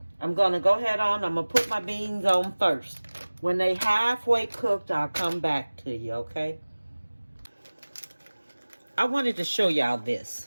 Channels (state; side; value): inverted; both; correlation -1.00